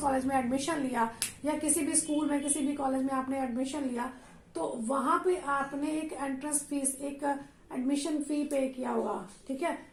में एडमिशन लिया, या किसी भी स्कूल में, किसी भी कॉलेज में आपने एडमिशन लिया, तो वहां पे आपने एक एंट्रेंस फीस, एक एडमिशन फी पे किया हुआ, ठीक है।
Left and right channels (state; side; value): identical; both; correlation 1.00